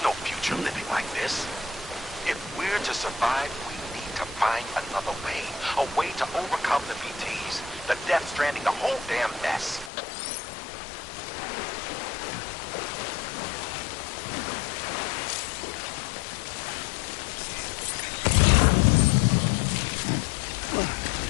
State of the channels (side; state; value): right; drops out; at 9.9 s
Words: future living like this. If we're to survive, we need to find another way. A way to overcome the BTs, the Death Stranding, the whole damn mess.